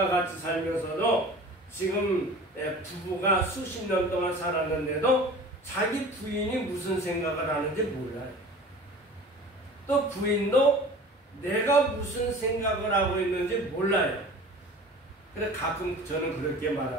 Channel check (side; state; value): both; normal; correlation 0.40